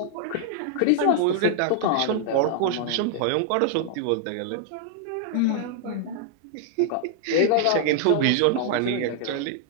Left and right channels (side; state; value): both; different; correlation 0.00